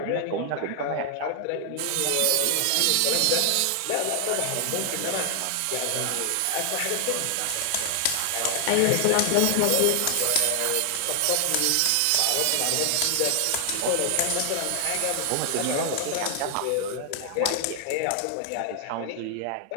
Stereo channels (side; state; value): both; different; correlation 0.00